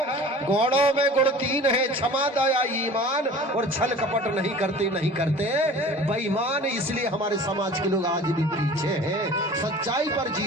गौड़ों में गुण तीन है, क्षमा दया ईमान, और छल कपट नहीं करते बेईमान। इसलिए हमारे समाज के लोग आज भी पीछे हैं, सच्चाई पर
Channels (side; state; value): both; normal; correlation 0.42